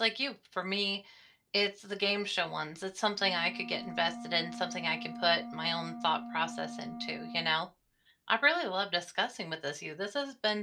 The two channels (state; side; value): identical; both; correlation 1.00